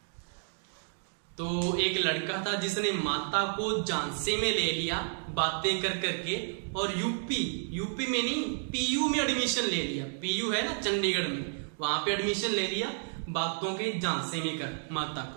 तो एक लड़का था जिसने माता को झांसे में ले लिया बातें कर करके, और यूपी में नहीं, पीयू में एडमिशन ले लिया। पीयू है ना चंडीगढ़ में, वहां पे एडमिशन ले लिया बातों के झांसे में कर माता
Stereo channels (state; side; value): silent; left; digital silence